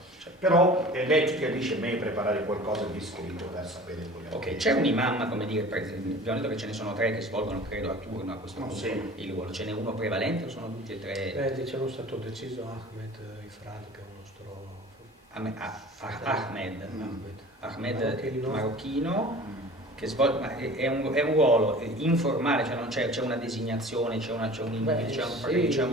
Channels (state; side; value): normal; both; correlation 0.42